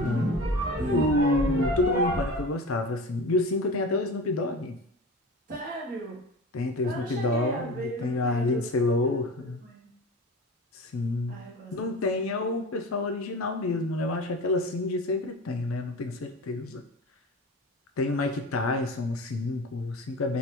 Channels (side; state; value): both; normal; correlation 0.32